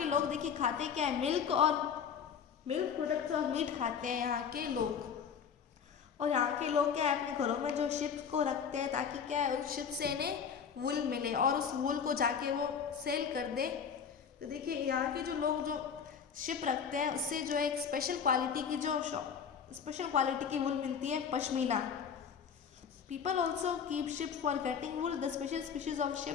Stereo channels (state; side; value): quieter; right; 7.1 dB